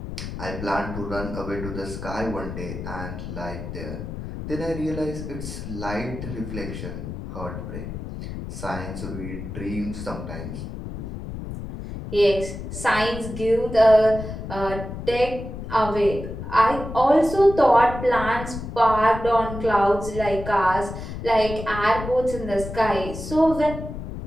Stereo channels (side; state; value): left; noise; rumble, 8 dB below the sound